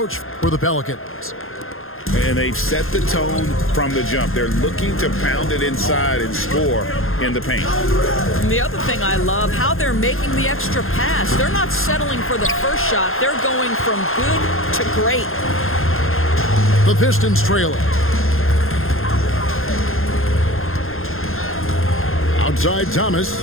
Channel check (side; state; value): right; late; 0.60 ms